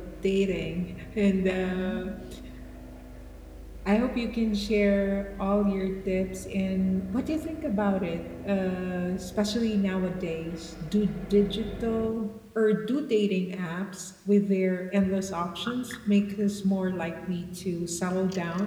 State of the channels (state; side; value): identical; both; correlation 1.00